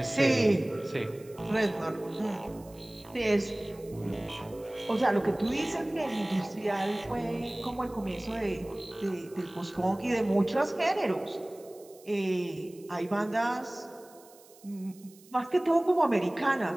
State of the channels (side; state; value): right; noise; hiss, 25 dB below the sound